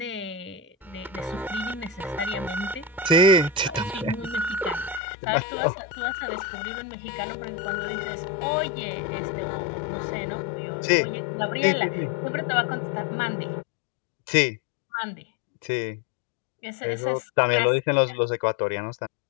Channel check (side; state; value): right; drops out; at 5.0 s